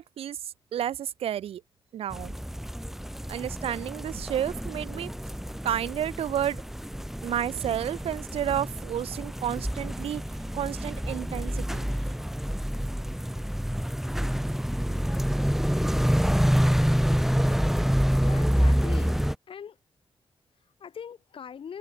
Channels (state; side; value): normal; both; correlation 0.85